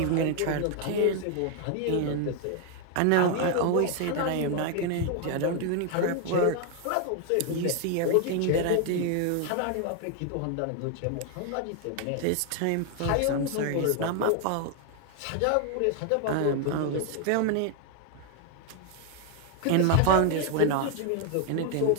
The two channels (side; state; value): both; different; correlation 0.00